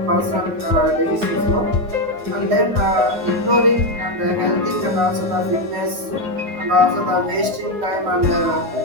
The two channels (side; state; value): left; late; 9.5 ms